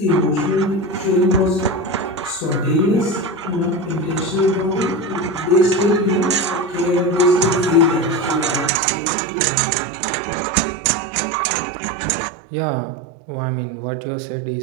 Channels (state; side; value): drops out; left; at 8.7 s